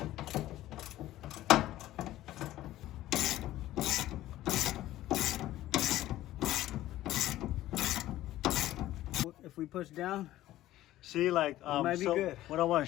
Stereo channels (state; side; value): quieter; right; 14.8 dB